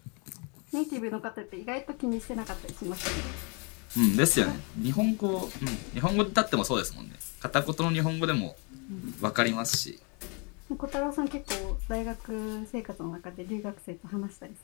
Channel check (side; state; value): right; quieter; 34.0 dB